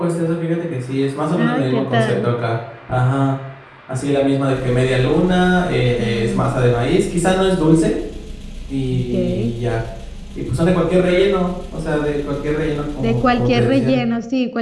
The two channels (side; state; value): both; identical; correlation 1.00